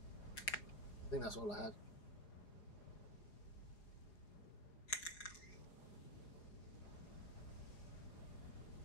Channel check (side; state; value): right; late; 4.8 ms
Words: I think that's all I had.